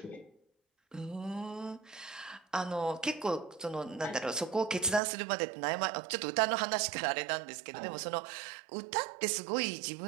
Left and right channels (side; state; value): left; drops out; at 5.0 s